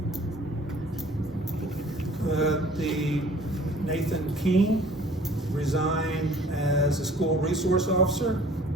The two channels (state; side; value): normal; both; correlation 0.52